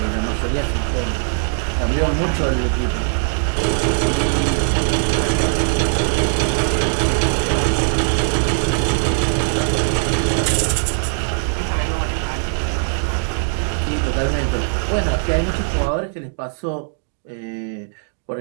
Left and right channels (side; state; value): left; silent; digital silence